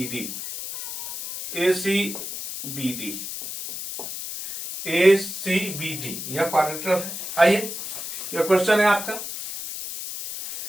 यह क्वाड्रिलेटरल है। आइए यह क्वेश्चन है आपका,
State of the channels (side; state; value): left; noise; hiss, 7 dB below the sound